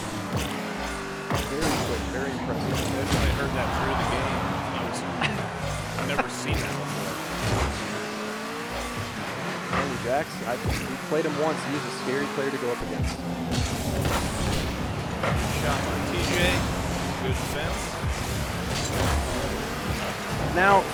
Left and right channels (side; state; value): both; identical; correlation 1.00